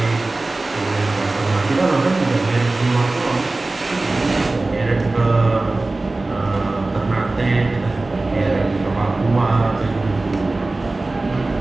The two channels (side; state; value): left; quieter; 3.1 dB